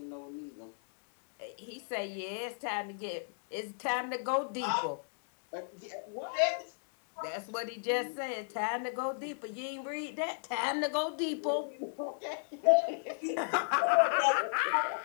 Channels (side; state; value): right; silent; digital silence